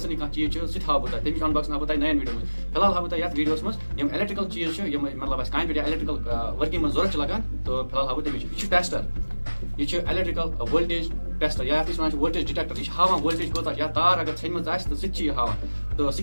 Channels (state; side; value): inverted; both; correlation -1.00